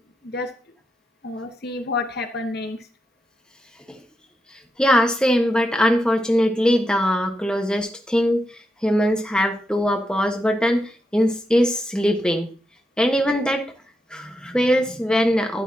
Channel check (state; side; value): normal; both; correlation 0.85